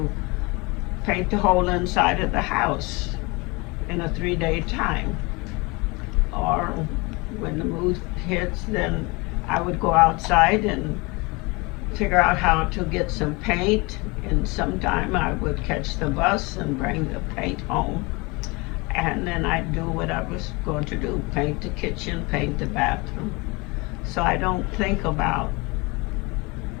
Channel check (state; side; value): quieter; right; 26.3 dB